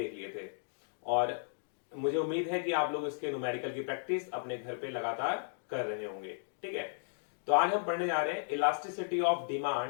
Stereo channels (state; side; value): silent; right; digital silence